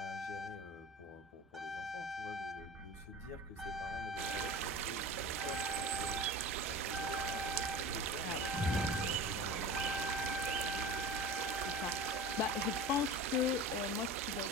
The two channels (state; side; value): normal; both; correlation 0.35